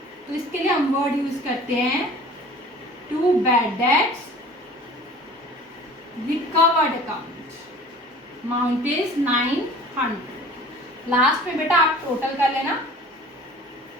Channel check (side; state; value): both; normal; correlation 0.45